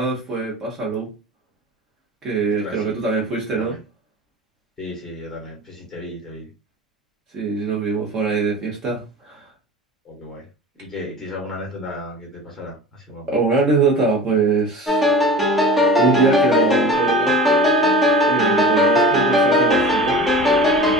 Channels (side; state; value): both; normal; correlation 0.37